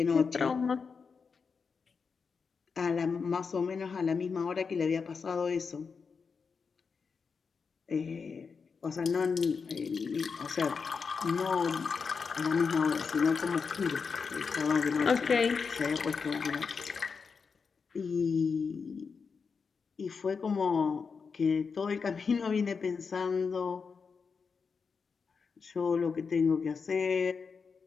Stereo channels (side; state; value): right; quieter; 5.4 dB